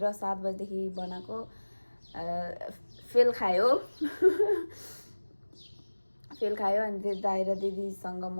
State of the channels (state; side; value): inverted; both; correlation -1.00